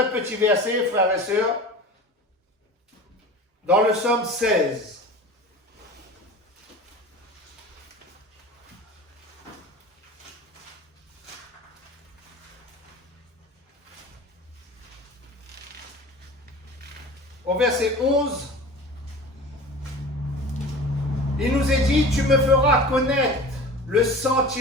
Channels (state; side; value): normal; both; correlation 0.37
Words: petit verset, frères et sœurs, dans le psaume 16. Au verset 11, il nous est dit, tu me feras connaître le